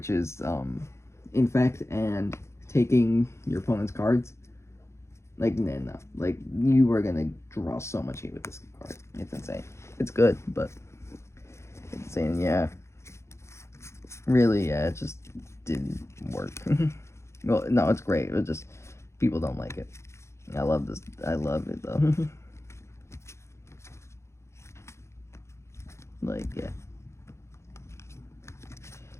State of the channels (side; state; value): right; late; 0.13 ms